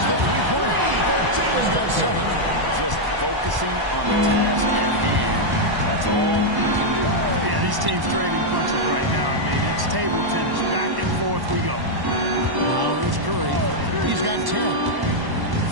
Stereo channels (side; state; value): left; late; 1.1 ms